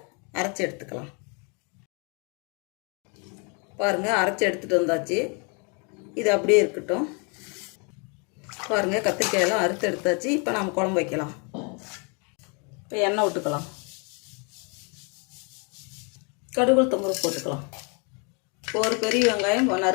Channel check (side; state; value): right; quieter; 34.5 dB